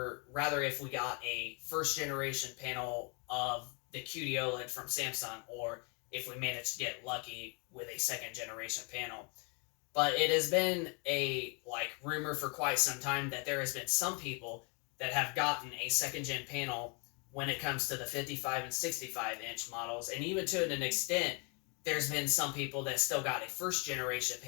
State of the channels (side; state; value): right; quieter; 34.5 dB